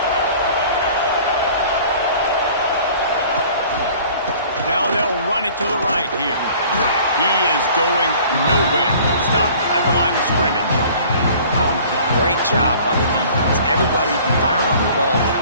Now they'll run it to the right here. He is going nowhere. Stop at the line of scrimmage. Great job by the defense. Everybody firing on the ball,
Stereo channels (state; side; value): inverted; both; correlation -0.49